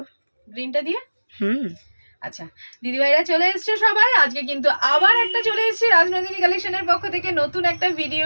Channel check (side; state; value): both; inverted; correlation -1.00